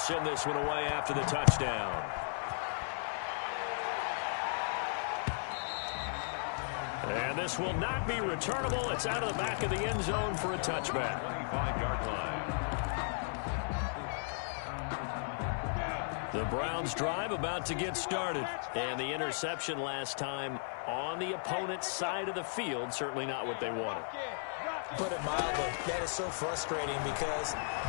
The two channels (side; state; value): right; silent; 54 dB below the other